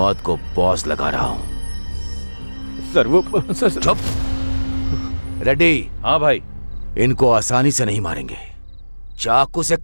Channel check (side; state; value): both; inverted; correlation -1.00